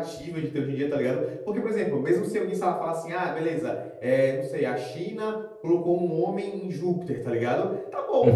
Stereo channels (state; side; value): identical; both; correlation 1.00